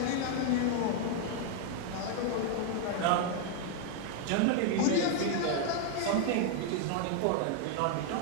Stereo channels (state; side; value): different; both; correlation 0.00